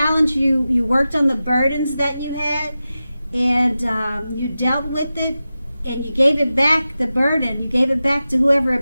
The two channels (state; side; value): inverted; both; correlation -0.94